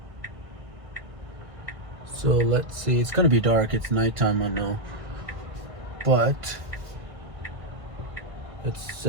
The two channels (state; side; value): late; left; 1.6 ms